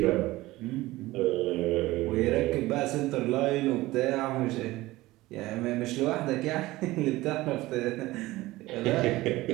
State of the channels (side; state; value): left; quieter; 18.5 dB